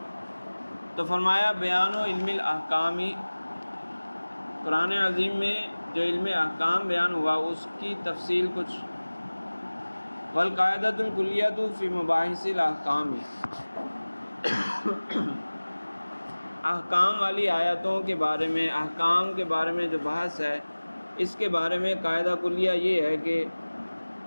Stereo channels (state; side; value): inverted; both; correlation -1.00